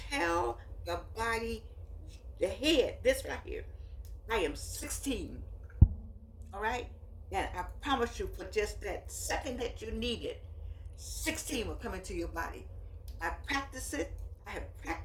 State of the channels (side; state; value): both; identical; correlation 1.00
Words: the body, the head, this right here, I am 16. All right? And I promise you, for just that second that you need it, 16 will come into your body. I practice it. I have